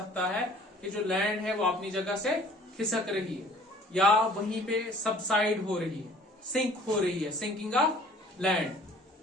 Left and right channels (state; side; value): normal; both; correlation 0.53